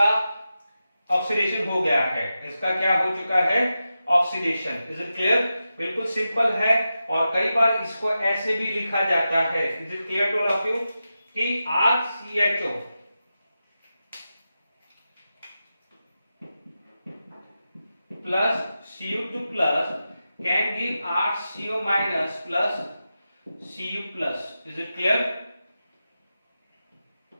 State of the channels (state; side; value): inverted; both; correlation -0.91